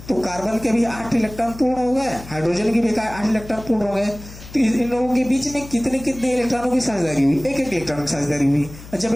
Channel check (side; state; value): left; noise; hum, 16 dB below the sound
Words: तो कार्बन के भी 8 इलेक्ट्रॉन पूर्ण हो गए, हाइड्रोजन के भी 8 इलेक्ट्रॉन पूर्ण हो गए। तो इन लोगों के बीच में कितने कितने इलेक्ट्रॉनों की साझेदारी हुई? एक इलेक्ट्रॉन की साझेदारी हुई। और जब